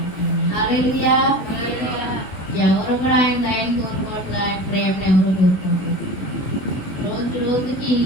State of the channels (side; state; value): right; late; 16 ms